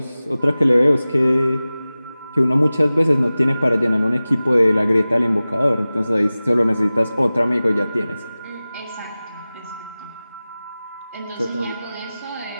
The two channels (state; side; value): inverted; both; correlation -0.97